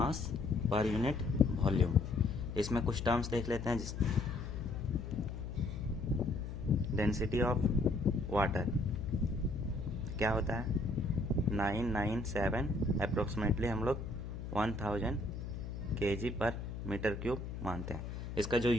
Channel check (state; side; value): noise; left; hum, 7 dB below the sound